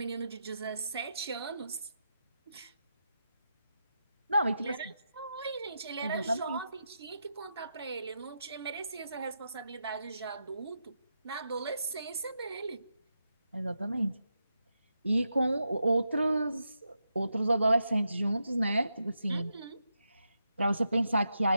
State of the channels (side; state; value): both; inverted; correlation -0.85